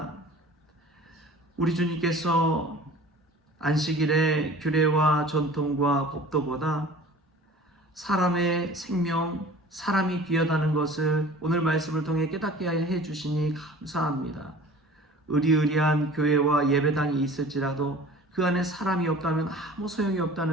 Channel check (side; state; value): both; normal; correlation 0.44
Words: 우리 주님께서 안식일의 규례와 전통과 법도보다 사람의 생명, 사람이 귀하다는 것을 오늘 말씀을 통해 깨닫게 해 주시니 감사합니다. 의리의리한 교회와 예배당이 있을지라도 그 안에 사람이 없다면 아무 소용이